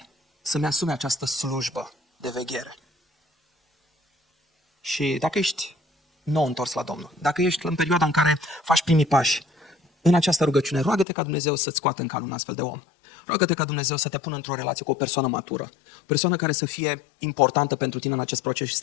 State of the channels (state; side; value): drops out; right; at 11.1 s